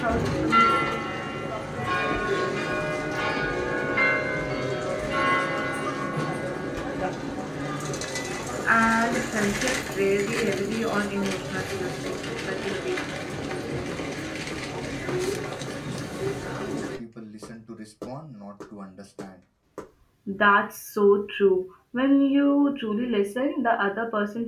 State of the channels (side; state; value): both; identical; correlation 1.00